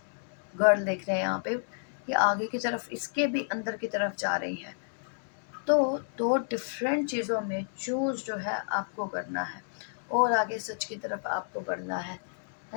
गर्ल देख रहे हैं यहाँ पे, ये आगे की तरफ, इसके भी अंदर की तरफ जा रही है। तो दो डिफरेंट चीज़ों में चूज जो है आपको करना है, और आगे सच की तरफ आपको बढ़ना है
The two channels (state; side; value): silent; right; digital silence